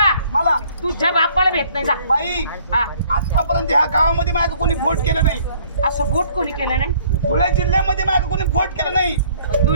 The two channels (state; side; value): inverted; both; correlation -0.58